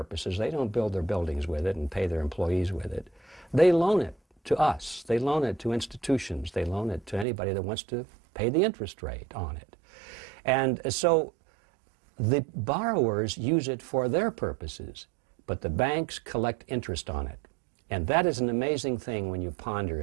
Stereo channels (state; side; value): drops out; left; at 7.2 s